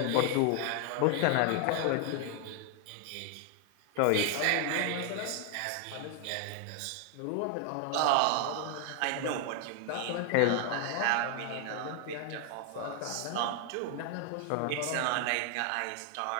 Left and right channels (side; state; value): both; different; correlation 0.00